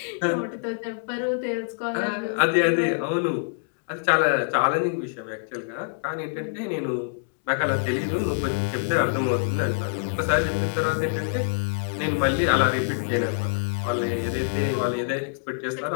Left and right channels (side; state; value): right; silent; digital silence